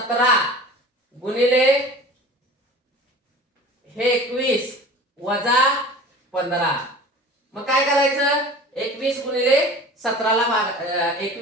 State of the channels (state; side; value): normal; both; correlation 0.40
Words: गुणिले हे 21 वजा 15. मग काय करायचं, 21 गुणिले 17 ला